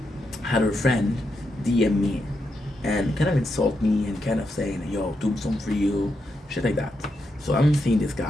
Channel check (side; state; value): both; normal; correlation 0.84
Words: had her friend DM me and kind of insult me and kind of saying, yo, tombstone for you, shit like that. So I'm seeing this